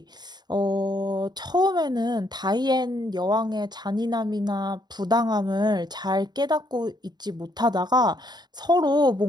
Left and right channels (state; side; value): late; left; 0.20 ms